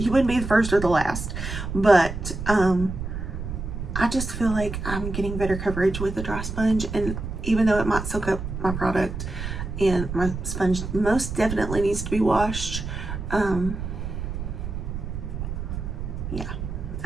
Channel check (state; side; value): noise; right; rumble, 6 dB below the sound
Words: wouldn't be the first or the last. But I just feel like I'm getting better coverage with the dry sponge. And even though it might soak up my product, and my sponge most definitely needs to be washed, yeah,